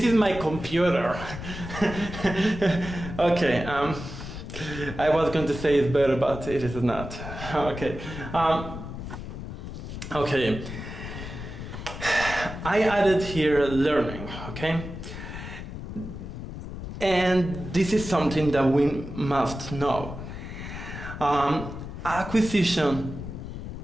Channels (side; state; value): left; noise; rumble, 9 dB below the sound